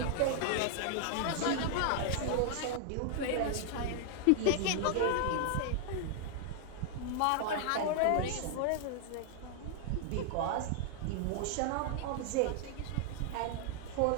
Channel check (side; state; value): both; different; correlation 0.00